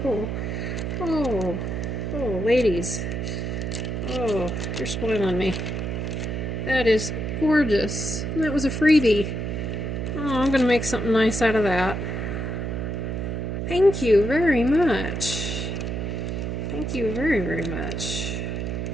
Oh, ladies. Oh, you're spoiling me. That is gorgeous. And that was a freebie. Oh, I'm going to make something nice out of that. Thank you very much. Thank you very, very much.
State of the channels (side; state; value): right; noise; hum, 3 dB below the sound